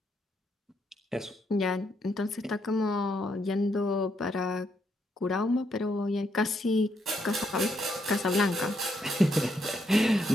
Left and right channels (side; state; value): both; normal; correlation 0.76